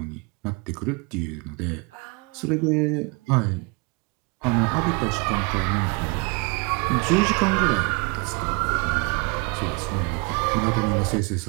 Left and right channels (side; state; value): left; quieter; 30.2 dB